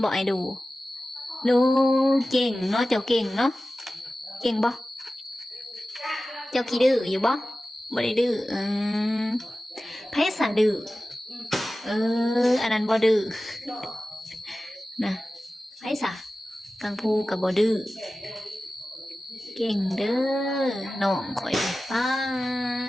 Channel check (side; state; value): both; normal; correlation 0.95